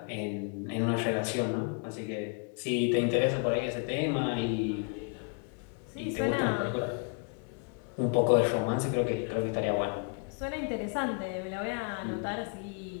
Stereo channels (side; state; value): right; quieter; 37.6 dB